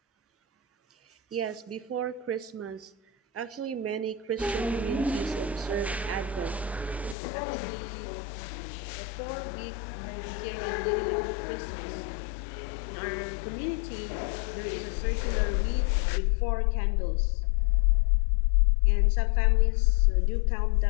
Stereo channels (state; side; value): drops out; right; at 7.2 s